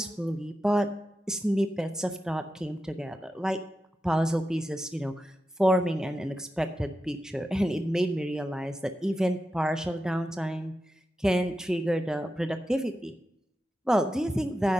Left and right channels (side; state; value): both; normal; correlation 0.90